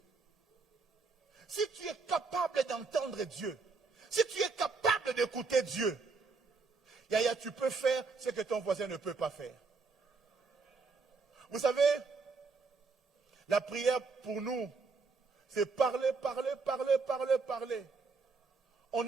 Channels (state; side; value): quieter; left; 4.4 dB